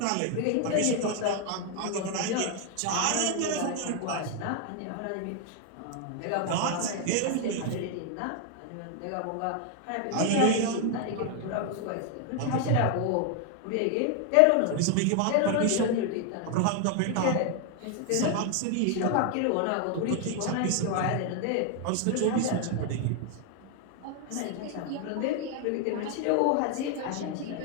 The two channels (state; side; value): different; both; correlation 0.00